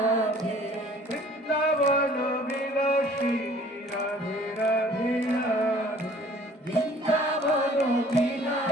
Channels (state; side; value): normal; both; correlation 0.53